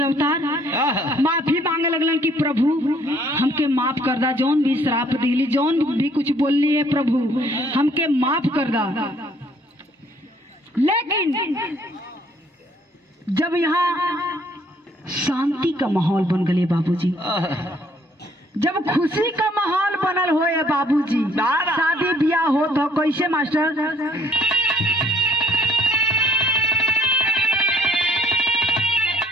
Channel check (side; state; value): both; normal; correlation 0.62